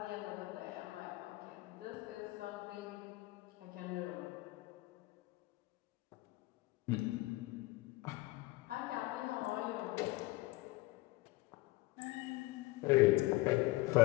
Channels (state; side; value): quieter; right; 20.3 dB